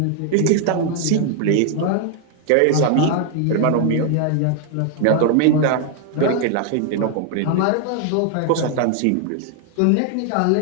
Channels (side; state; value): both; different; correlation 0.00